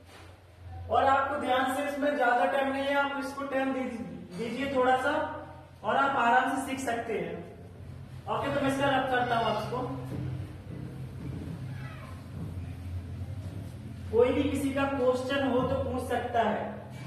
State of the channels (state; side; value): identical; both; correlation 1.00